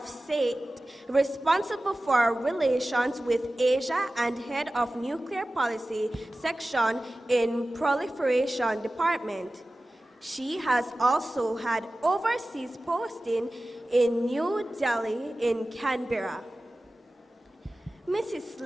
State, responsible for relations with Asia and Head of Nuclear Policy Section in Proliferation Department. She has also had overseas posting in New Delhi and Canberra. Mrs.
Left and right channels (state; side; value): normal; both; correlation 0.96